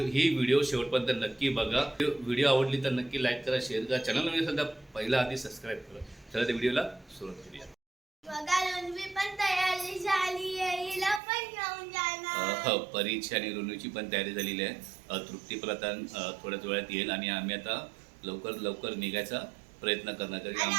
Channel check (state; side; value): drops out; left; at 11.2 s